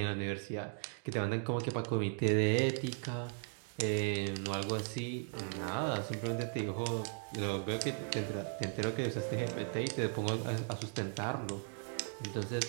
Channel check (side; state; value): left; silent; 53 dB below the other